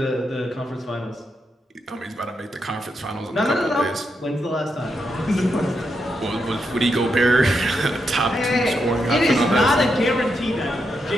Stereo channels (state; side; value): normal; both; correlation 0.83